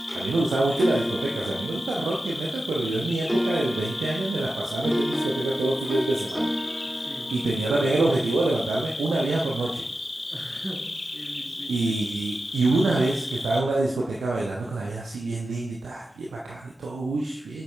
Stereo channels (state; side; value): normal; both; correlation 0.92